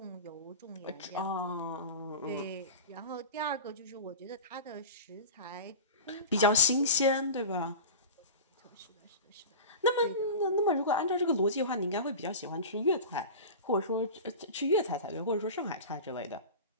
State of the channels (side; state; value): both; inverted; correlation -0.31